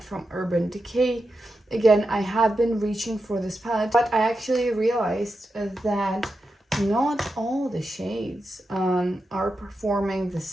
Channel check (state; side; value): normal; both; correlation 0.89